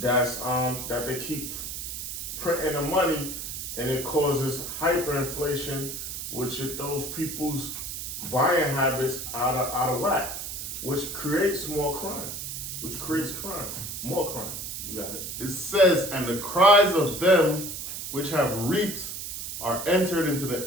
that they keep printing the money, and it causes hyperinflation, which it throws people's buying habits out of whack, which creates more crime, more crime. You got it. It says, and the cries of them which have reaped are entered into the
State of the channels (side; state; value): right; noise; hiss, 6 dB below the sound